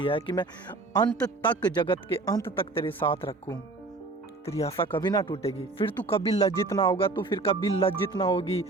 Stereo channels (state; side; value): quieter; left; 3.4 dB